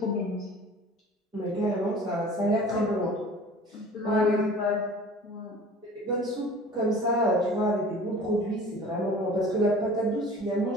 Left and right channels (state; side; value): normal; both; correlation 0.44